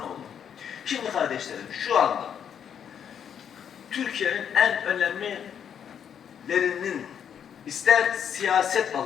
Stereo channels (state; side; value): quieter; right; 8.3 dB